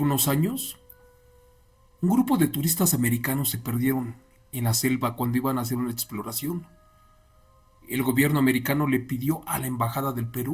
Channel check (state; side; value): identical; both; correlation 1.00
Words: años, un grupo de turistas americanos se perdieron en la selva cuando iban a hacer una exploración. El gobierno americano le pidió a la Embajada del